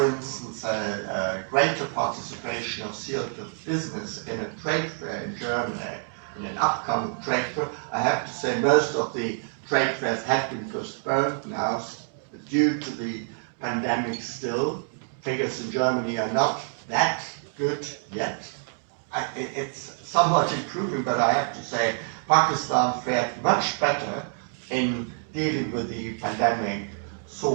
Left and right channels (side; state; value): left; silent; 60 dB below the other